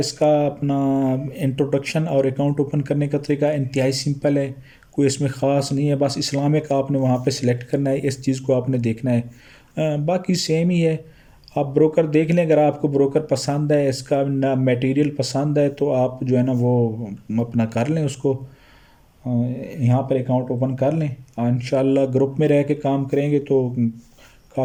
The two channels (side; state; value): both; identical; correlation 1.00